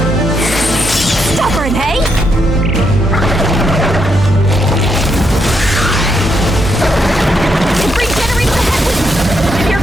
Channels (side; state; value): both; normal; correlation 0.79